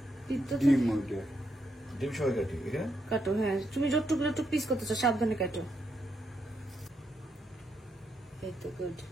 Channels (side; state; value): both; normal; correlation 0.80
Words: ডিম ডিম সবাই কাটি এখানে কাটো। হ্যাঁ তুমি যতটুকু যতটুকু পিস করতে চাও সাবধানে কাটো। এই তো গুড।